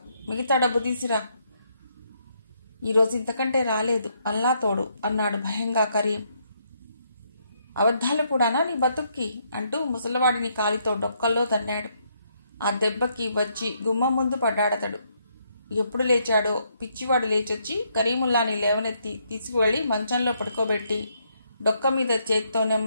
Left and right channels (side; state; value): both; inverted; correlation -0.74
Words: మిగతా డబ్బు తీసిరా. ఈరోజు ఇంతకంటే రాలేదు, అల్లా తోడు అన్నాడు భయంగా కరీం. అబద్ధాలు కూడానా నీ బతుక్కి అంటూ ముసలివాడిని కాలితో డొక్కల్లో తన్నాడు. ఆ దెబ్బకి వచ్చి గుమ్మం ముందు పడ్డాడతడు. ఎప్పుడు లేచాడో పిచ్చివాడు లేచొచ్చి కరీముల్లాని లేవనెత్తి తీసుకువెళ్లి మంచంలో పడుకోబెట్టి డొక్క మీద చేతితో